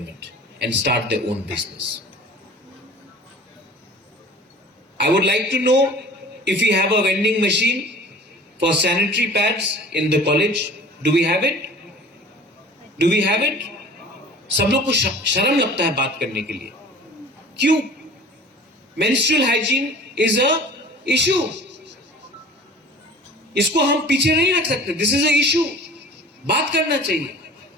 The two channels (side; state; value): both; normal; correlation 0.44